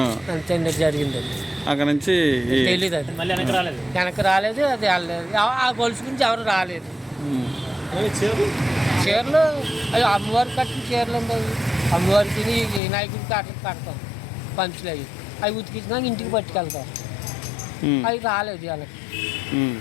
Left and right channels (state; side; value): drops out; right; at 12.8 s